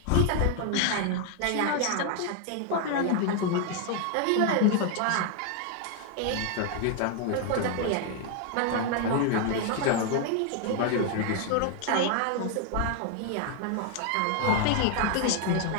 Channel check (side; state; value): both; different; correlation 0.01